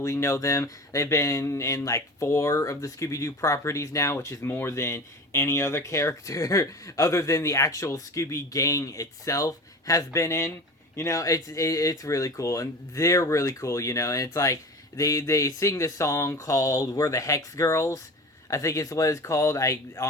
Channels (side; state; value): both; normal; correlation 0.34